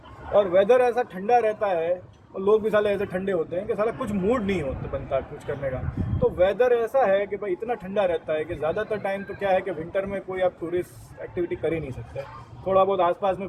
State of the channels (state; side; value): identical; both; correlation 1.00